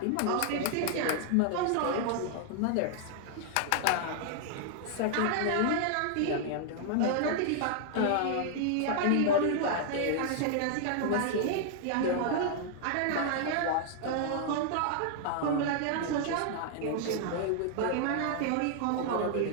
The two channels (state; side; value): different; both; correlation 0.00